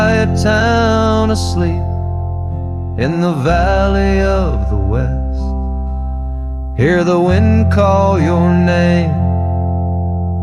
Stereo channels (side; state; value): both; identical; correlation 1.00